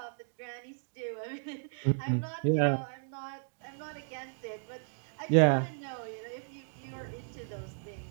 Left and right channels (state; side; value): silent; left; digital silence